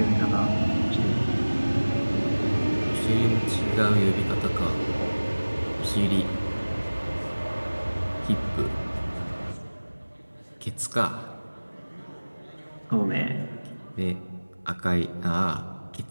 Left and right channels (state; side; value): inverted; both; correlation -1.00